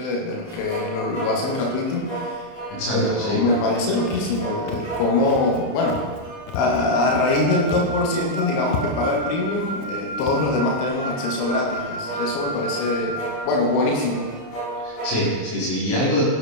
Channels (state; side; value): late; right; 29 ms